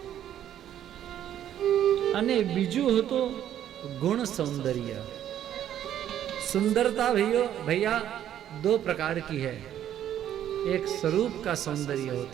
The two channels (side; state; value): left; quieter; 10.9 dB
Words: અને બીજું હતો गुण सौंदर्य. सुंदरता भैया 2 प्रकार की है. एक स्वरूप का सौंदर्य